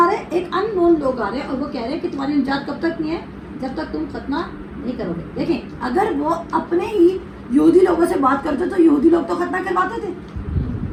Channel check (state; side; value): identical; both; correlation 1.00